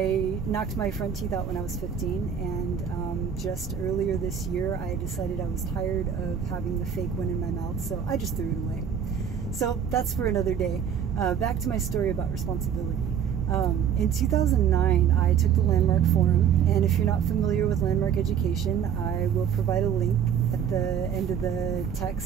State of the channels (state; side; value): quieter; left; 8.1 dB